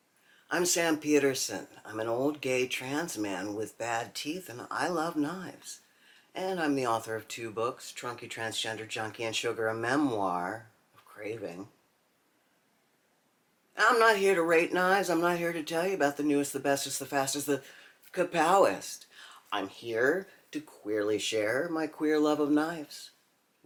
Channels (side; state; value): both; identical; correlation 1.00